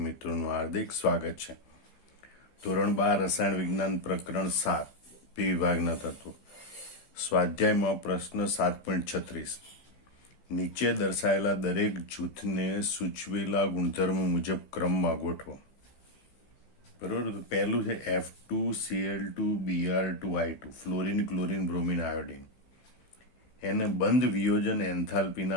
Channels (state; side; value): late; right; 15 ms